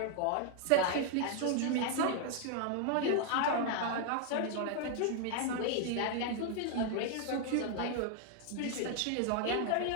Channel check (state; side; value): different; both; correlation 0.00